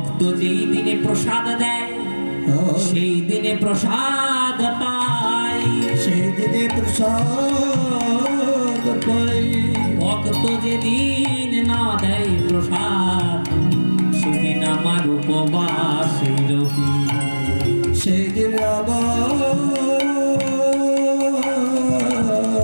যেই দিনে প্রসাদ দেয় সেই দিনে প্রসাদ পাই, সেই দিনে প্রসাদ পাই। ভক্ত যেদিন না দেয় প্রসাদ সেদিন আমার উপবাস রহি। সেদিন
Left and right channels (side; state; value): both; inverted; correlation -1.00